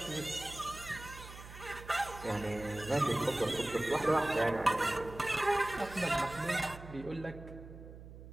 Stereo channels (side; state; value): right; noise; hum, 15 dB below the sound